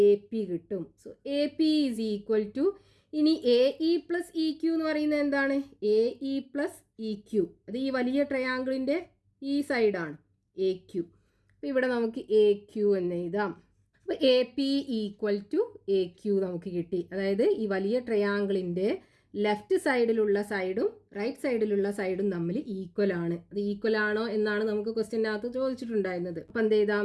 എ പി കിട്ടും. So A P is equal to, ഇനി A E plus E Q എന്ന് പറയുന്നത് എന്താണ്? A E plus E Q. അത് ഈ വലിയ ട്രയാങ്കിളിൻ്റെ ഈ സൈഡാണ് എ ക്യു. അപ്പോൾ ഇവിടെ നമുക്ക് എ ക്യു എന്ന് എഴുതാം. അപ്പോൾ A P equal to A Q നമുക്ക് കിട്ടി. അതായത് ഈ വലിയ ട്രയാങ്കിളിൻ്റെ ലെഫ്റ്റ് സൈഡിലുള്ള സൈഡും റൈറ്റ് സൈഡിലുള്ള സൈഡും തമ്മിൽ ഈക്വൽ ആണ്. അത് ഈക്വൽ ആണോ എന്നാണ് നമുക്ക് ക്വസ്റ്റ്യനകത്ത് ചോദിച്ചിട്ടുണ്ടായിരുന്നത്. അപ്പം എന്ത്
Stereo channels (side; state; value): both; identical; correlation 1.00